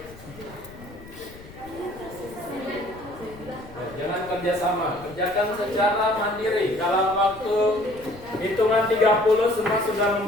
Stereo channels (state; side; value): noise; left; rumble, 19 dB below the sound